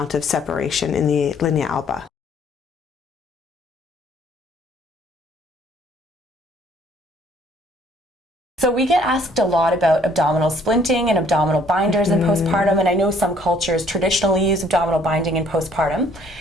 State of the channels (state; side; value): normal; both; correlation 0.61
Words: of separation in the linea alba. So we get asked a lot about abdominal splinting and abdominal binders in postpartum, and I know some cultures traditionally use abdominal binding in postpartum.